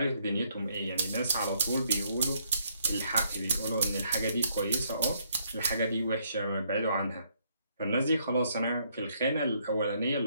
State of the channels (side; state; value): both; inverted; correlation -0.70